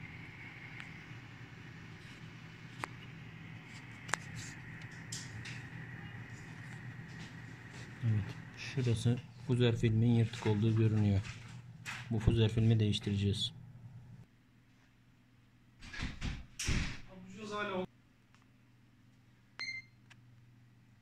Evet, şurası fuzer filmin yırtık olduğu görünüyor. Bu fuzer filmi değiştireceğiz.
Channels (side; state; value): both; identical; correlation 1.00